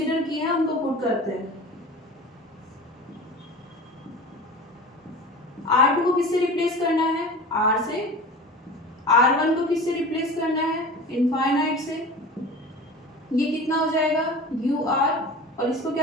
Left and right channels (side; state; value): both; normal; correlation 0.35